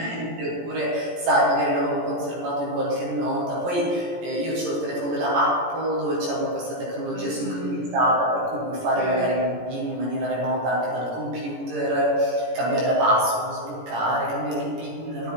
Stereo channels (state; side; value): late; left; 17 ms